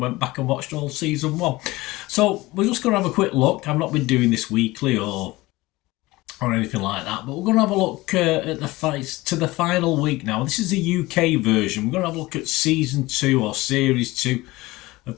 back and watched all season 1. So we're just going to have a quick look. I've not been doing this weekly or anything like that, but we're going to have a look at the fights to the final week now. This is the UK version. We're going to have a look at season 2 or series 2 of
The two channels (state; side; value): quieter; right; 20.1 dB